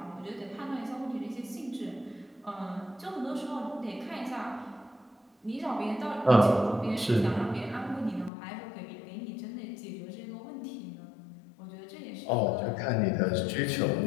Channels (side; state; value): right; drops out; at 8.3 s